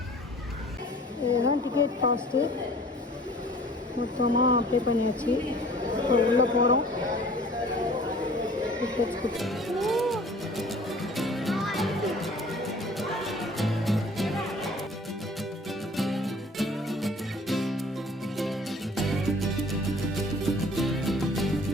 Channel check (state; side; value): normal; both; correlation 0.49